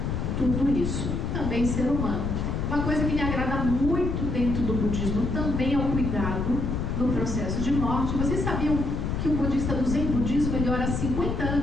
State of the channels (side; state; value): left; noise; rumble, 1 dB below the sound